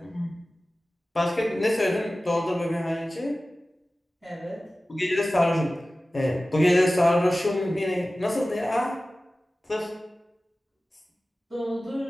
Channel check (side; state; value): both; normal; correlation 0.96